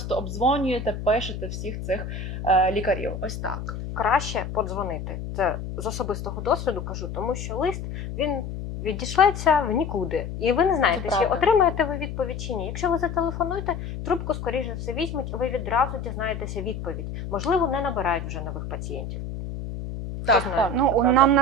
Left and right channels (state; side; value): noise; left; hum, 7 dB below the sound